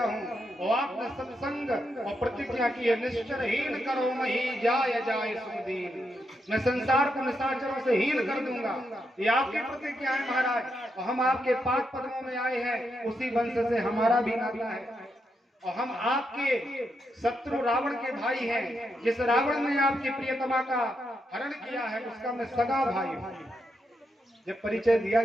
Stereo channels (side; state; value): both; normal; correlation 0.82